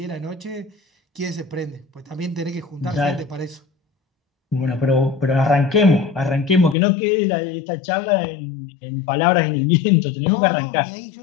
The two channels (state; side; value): drops out; right; at 6.8 s